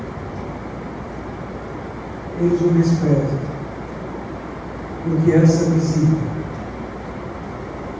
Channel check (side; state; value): both; identical; correlation 1.00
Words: Eles o desprezam. Porque essa visita,